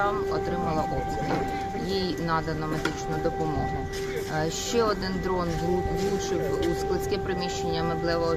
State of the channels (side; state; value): both; identical; correlation 1.00